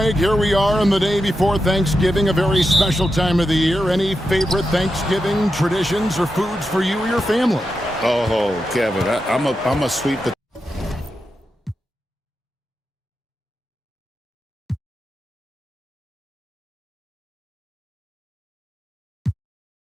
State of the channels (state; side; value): normal; both; correlation 0.88